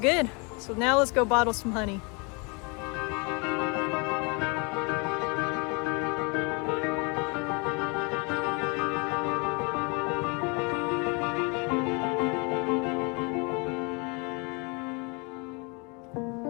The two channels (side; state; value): right; quieter; 31.6 dB